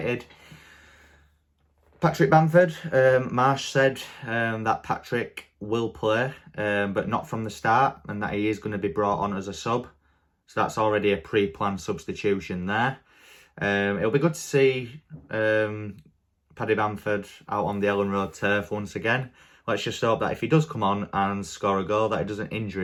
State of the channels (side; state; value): both; identical; correlation 1.00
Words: Patrick Bamford, Marsch said that Patrick will play, but not from the start, and that he is going to be brought on as a sub. So that's already a pre-planned substitution there. It'll be good to see Paddy Bamford out on the Elland Road turf once again. Let's just hope that if he does come on and score a goal, that he doesn't injure